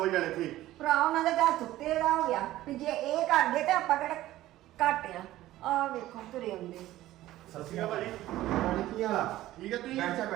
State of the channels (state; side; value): quieter; left; 15.3 dB